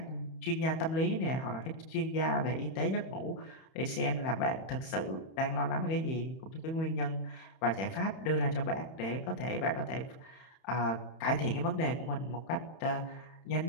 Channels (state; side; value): late; right; 31 ms